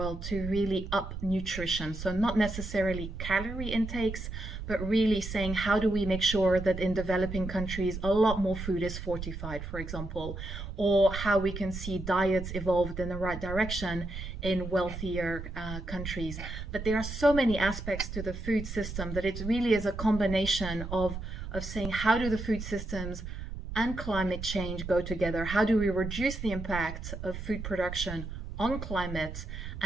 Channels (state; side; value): noise; right; rumble, 7 dB below the sound